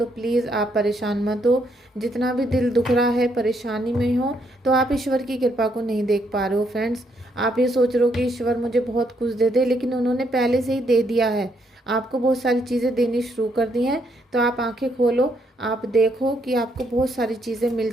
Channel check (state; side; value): normal; both; correlation 0.74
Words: प्लीज़ आप परेशान मत हो। जितना भी दिल दुख रहा है, परेशानी में हो, तो आप ईश्वर की कृपा को नहीं देख पा रहे हो फ्रेंड्स। आप ये सोच रहे हो कि ईश्वर मुझे बहुत कुछ दे दे, लेकिन उन्होंने पहले से ही दे दिया है, आपको बहुत सारी चीज़ें देनी शुरू कर दी हैं। तो आप आंखें खोलो, आप देखो कि आपको बहुत सारी चीज़ें मिल